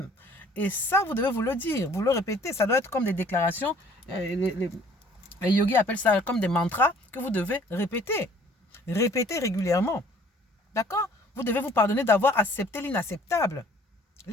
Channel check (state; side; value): normal; both; correlation 0.55